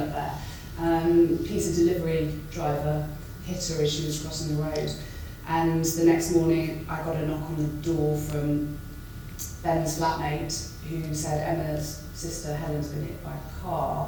there, pizza delivery driver hit her as she was crossing the road. And the next morning I got a knock on the door from Ben's flatmate, who said Emma's sister Helen's been hit by a car.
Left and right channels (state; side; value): identical; both; correlation 1.00